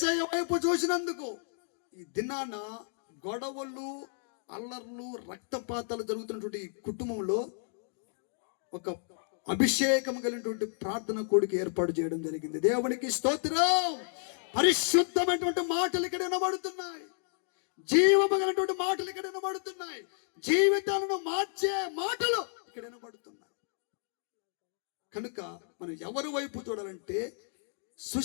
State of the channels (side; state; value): right; silent; digital silence